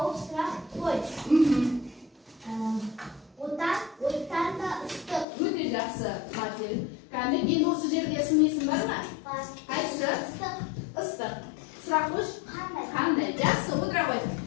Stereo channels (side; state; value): right; drops out; at 5.2 s